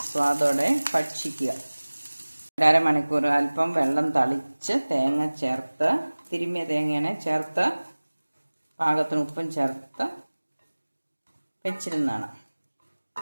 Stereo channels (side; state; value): both; inverted; correlation -1.00